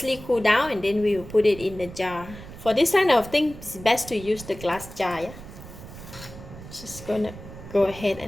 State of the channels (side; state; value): right; noise; rumble, 15 dB below the sound